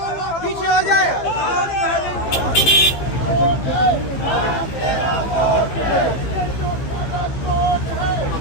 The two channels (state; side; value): late; right; 16 ms